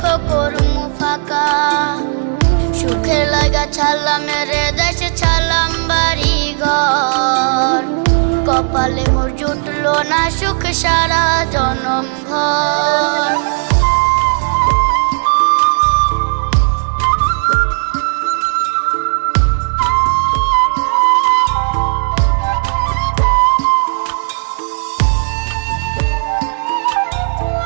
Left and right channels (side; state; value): left; silent; 56 dB below the other